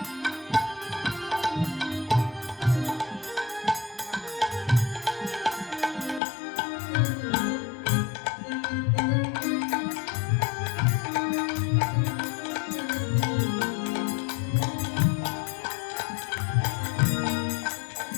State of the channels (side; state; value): right; drops out; at 6.2 s